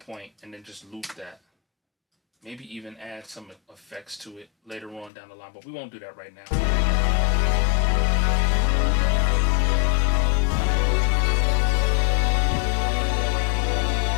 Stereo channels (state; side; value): drops out; right; at 5.1 s